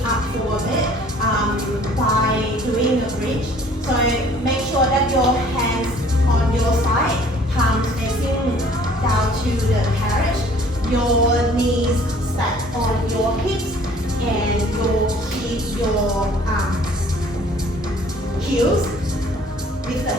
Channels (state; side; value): normal; both; correlation 0.54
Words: up for a bit by doing a bridge. So make sure that your hands on your side, palms facing down to the carriage. Your knees stack on your hips and you'll keep your heels with the